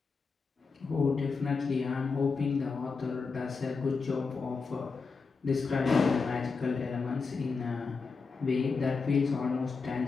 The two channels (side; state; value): right; quieter; 4.7 dB